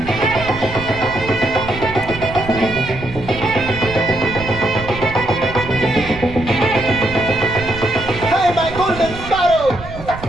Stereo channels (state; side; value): noise; right; rumble, 12 dB below the sound